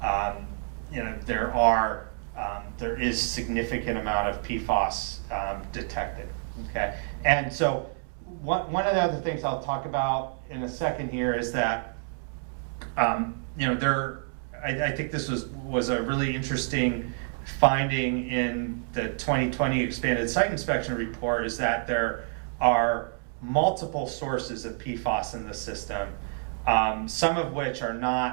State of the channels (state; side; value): silent; left; 59 dB below the other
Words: there is significant amount of PFAS detected. Okay, and so one of the other things I'll talk about in a second here is that I think this was a really interesting finding in the 2020 expanded site inspection report, is that there are multiple sources of PFAS in the system, some of which are